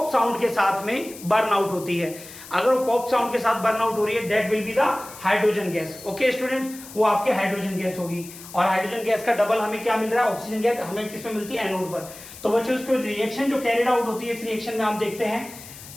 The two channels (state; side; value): noise; left; hiss, 16 dB below the sound